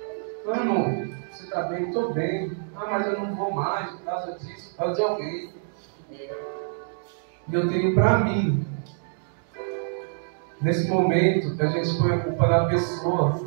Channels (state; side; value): silent; left; digital silence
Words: Não, irmão, você está bem? Estou bem. Ah, mas eu não vou mais por causa disso, por causa de alguém. E eu tenho para mim, nesse momento que a gente põe a culpa na pessoa,